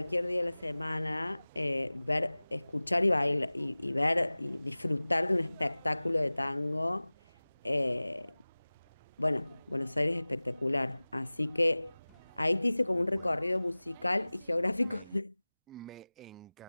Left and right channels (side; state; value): both; inverted; correlation -1.00